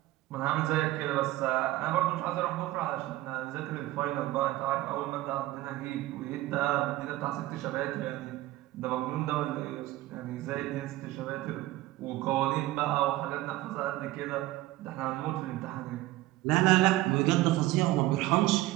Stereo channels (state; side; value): quieter; left; 17.0 dB